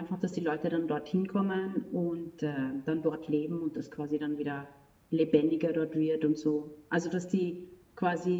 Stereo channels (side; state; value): both; identical; correlation 1.00